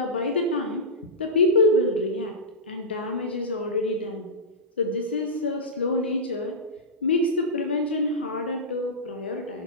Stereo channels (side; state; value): both; normal; correlation -0.14